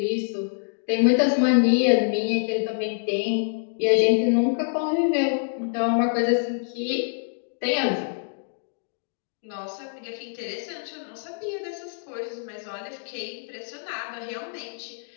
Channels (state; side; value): silent; right; digital silence